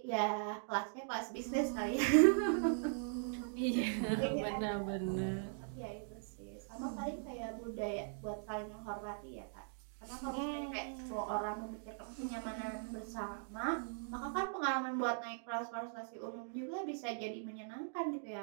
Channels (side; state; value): left; silent; digital silence